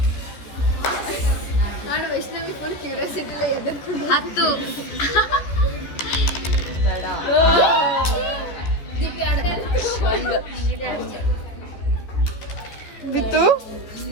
ವೈಷ್ಣವಿ ಫುಲ್ ಕ್ಯೂರಿಯಾಸಿಟಿ 10 ಬೇಡ ದೀಪಿ ಆಡ್ದೆ ಬಿತ್ತು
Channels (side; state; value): right; late; 14 ms